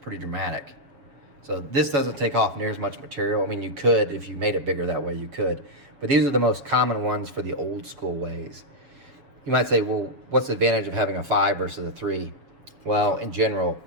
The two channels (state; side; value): late; left; 7.3 ms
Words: dramatic. So this doesn't take off near as much material. I mean, you could, if you made it bigger that way, you could. But these are the most common ones for the old school ways. You might say, well, what's the advantage of having a 5 versus a 3? Well, in general,